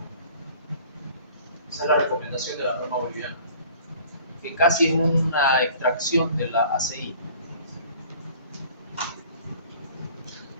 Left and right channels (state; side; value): inverted; both; correlation -0.49